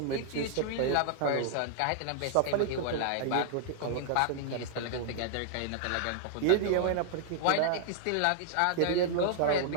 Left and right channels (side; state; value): both; different; correlation -0.01